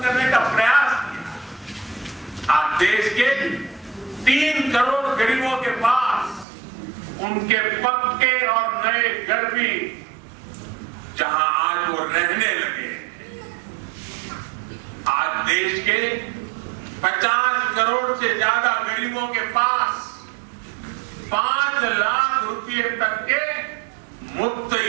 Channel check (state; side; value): drops out; left; at 6.5 s